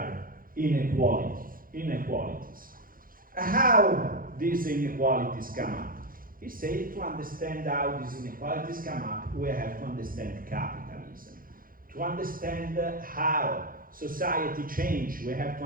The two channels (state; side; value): late; left; 0.41 ms